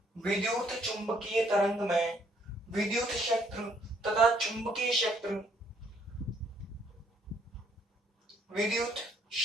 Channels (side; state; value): both; normal; correlation 0.67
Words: विद्युत चुंबकीय तरंग में विद्युत क्षेत्र तथा चुंबकीय क्षेत्र, विद्युत